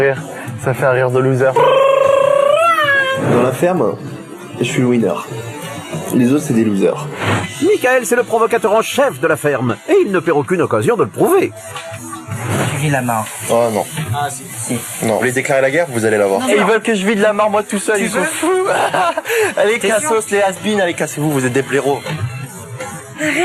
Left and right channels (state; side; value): identical; both; correlation 1.00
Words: Ça fait un rire de loser. Dans la ferme, je suis le winner. Les autres, c'est des losers. Michael, c'est le provocateur en chef de la ferme. Et il ne perd aucune occasion de le prouver. Tu vis la mare. Oh non. Ah, si. Non. Vous voulez déclarer la guerre? Vous allez la voir. Et ils veulent que je vide la mare moi tout seul, ils sont fous. Allez, cassos, les has-been, allez, cassez-vous, vous êtes des blaireaux.